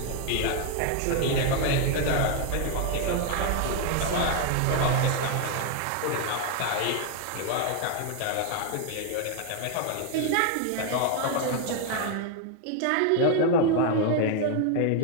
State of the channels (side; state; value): both; different; correlation 0.00